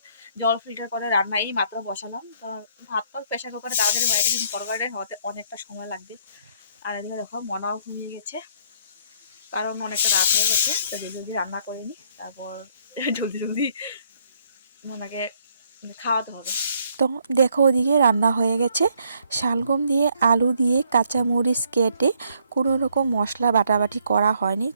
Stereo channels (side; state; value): both; inverted; correlation -0.68